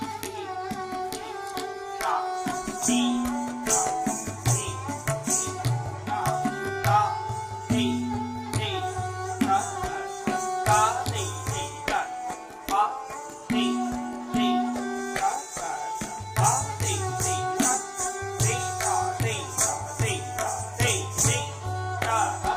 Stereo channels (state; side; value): identical; both; correlation 1.00